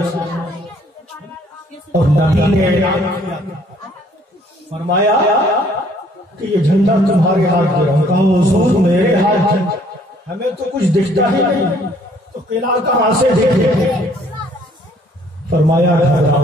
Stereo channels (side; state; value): both; normal; correlation 0.61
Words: سامنے اور نبی نے اعلان کیا، فرمایا کہ یہ جھنڈا تمہارے ہاتھ میں ہے۔ کہا حضور میرے ہاتھ میں ہمیں تو کچھ دکھتا ہی نہیں، تو قلعہ کہاں سے دیکھے؟ فرمایا